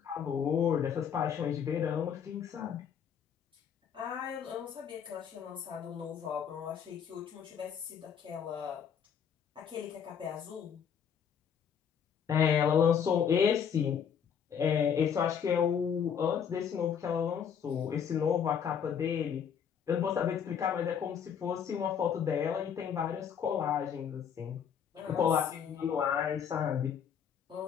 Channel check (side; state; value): right; quieter; 7.8 dB